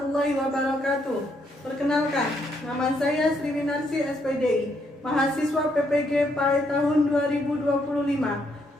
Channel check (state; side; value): normal; both; correlation 0.74